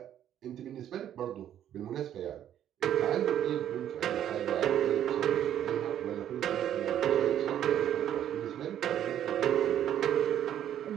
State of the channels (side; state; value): left; quieter; 10.7 dB